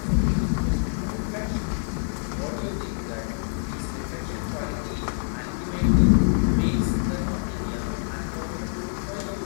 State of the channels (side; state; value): right; silent; digital silence